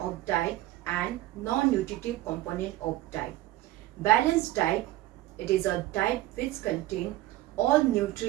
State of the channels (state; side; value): quieter; left; 16.0 dB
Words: diet and non-nutritive component of diet. Balanced diet, it is a diet which contains all